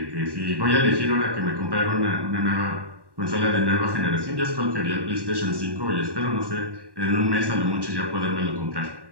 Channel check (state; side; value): late; left; 1.1 ms